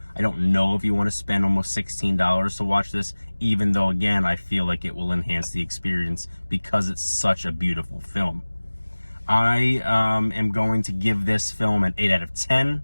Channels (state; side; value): inverted; both; correlation -1.00